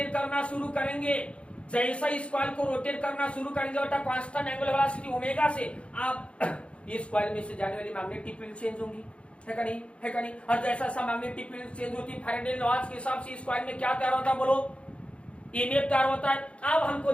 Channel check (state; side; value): late; right; 0.060 ms